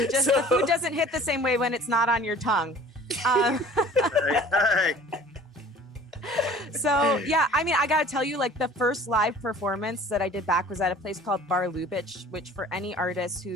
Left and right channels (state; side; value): normal; both; correlation 0.48